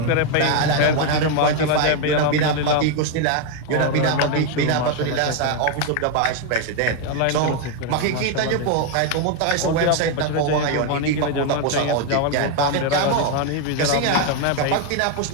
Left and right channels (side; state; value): both; different; correlation 0.01